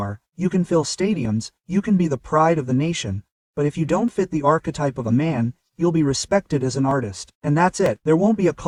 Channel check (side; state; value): both; identical; correlation 1.00